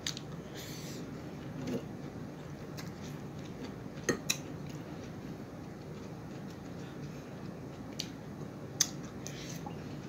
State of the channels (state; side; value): identical; both; correlation 1.00